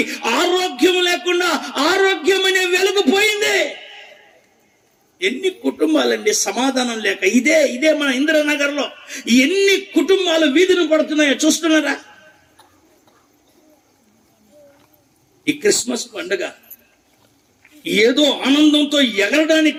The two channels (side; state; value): both; identical; correlation 1.00